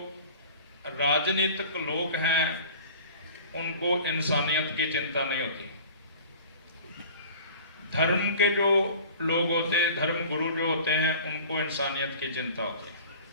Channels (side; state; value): both; inverted; correlation -0.43